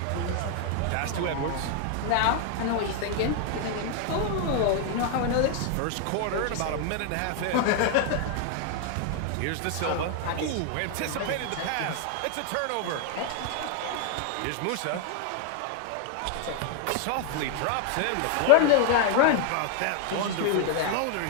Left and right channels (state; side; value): different; both; correlation 0.00